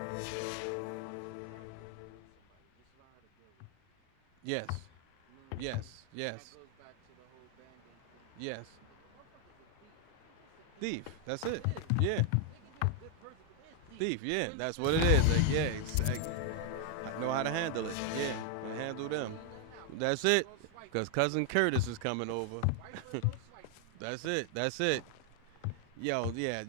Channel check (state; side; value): different; both; correlation 0.00